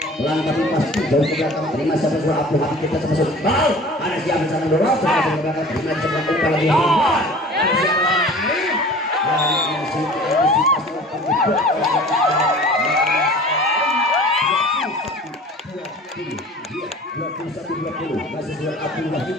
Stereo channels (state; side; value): normal; both; correlation 0.43